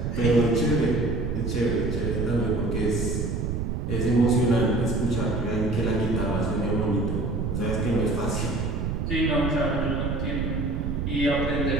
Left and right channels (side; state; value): right; noise; rumble, 1 dB below the sound